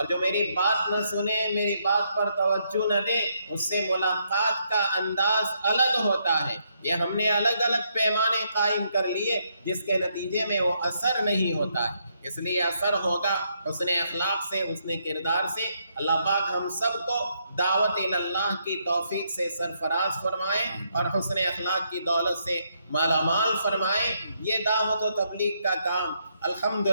جو میری بات نہ سنے، میری بات پر توجہ نہ دے، اس سے ملاقات کا انداز الگ ہوتا ہے۔ یہ ہم نے الگ الگ پیمانے قائم کر لیے جس کے نتیجے میں وہ اثر نہیں ہوتا ہے۔ اس لیے اثر ہوگا حسن اخلاق سے، حسن کردار سے۔ اللہ پاک ہم سب کو دعوت اللہ کی توفیق سے سرفراز فرمائے اور حسن اخلاق کی دولت سے مالا مال فرمائے۔ یہ دعوت و تبلیغ کا کام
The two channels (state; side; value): inverted; both; correlation -0.76